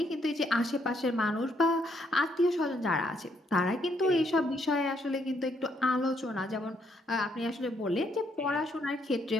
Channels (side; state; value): both; normal; correlation 0.73